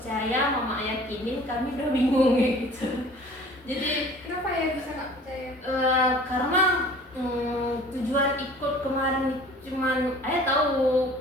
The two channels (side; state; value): both; normal; correlation 0.48